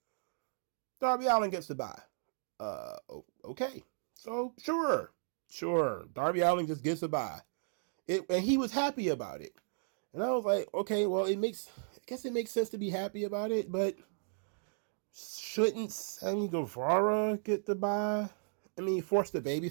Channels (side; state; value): left; silent; digital silence